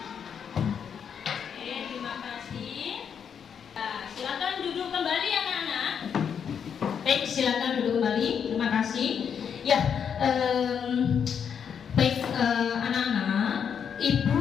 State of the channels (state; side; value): quieter; right; 7.5 dB